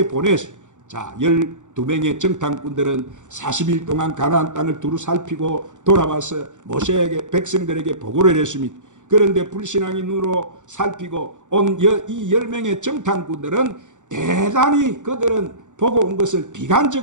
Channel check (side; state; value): left; late; 0.86 ms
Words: 보냈어요. 자, 12명의 정탐꾼들은 40일 동안 가나안 땅을 두루 살피고 돌아와서 모세에게 백성들에게 보고를 했습니다. 그런데 불신앙인으로 살피고 온 이 10명의 정탐꾼들은 대단히 그들은 보고 온 것을